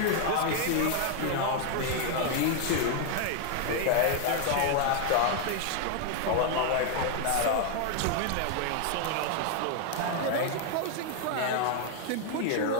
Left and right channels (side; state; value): both; different; correlation 0.00